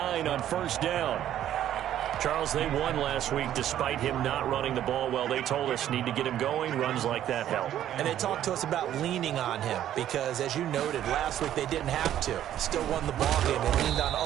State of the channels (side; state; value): left; quieter; 11.5 dB